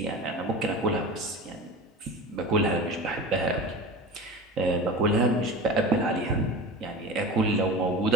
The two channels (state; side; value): normal; both; correlation 0.35